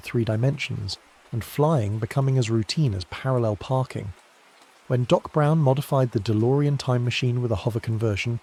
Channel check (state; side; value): identical; both; correlation 1.00